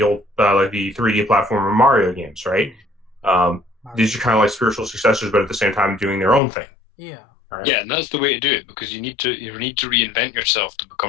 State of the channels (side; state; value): right; drops out; at 6.4 s